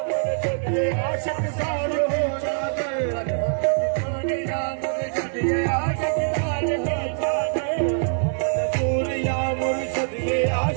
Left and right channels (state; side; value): silent; left; digital silence